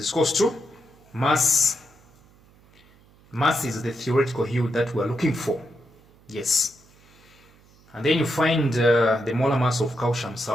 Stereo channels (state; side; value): noise; right; hum, 29 dB below the sound